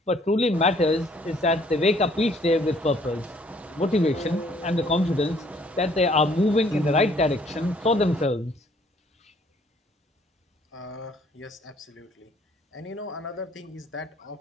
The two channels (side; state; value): both; normal; correlation 0.61